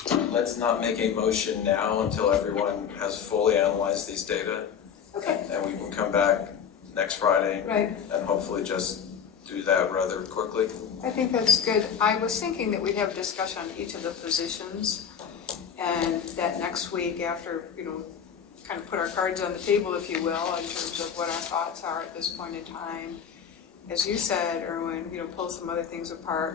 Let's not make a motion now until everyone has fully analyzed these data. Okay. And we can come back next Friday. Right. And hopefully just do that rather quickly. I think that's good. I was thinking that we'd have a discussion on each of the positions, and that next week after, kind of put our cards on the table, if you will, in terms of what our thoughts are at this point in time. As you said, Erwin, pull some other things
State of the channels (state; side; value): quieter; right; 7.6 dB